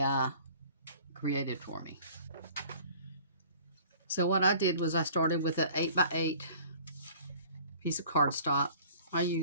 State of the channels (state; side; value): inverted; both; correlation -0.49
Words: created for me. So what I did was I started with an 8x8 piece of cardstock. I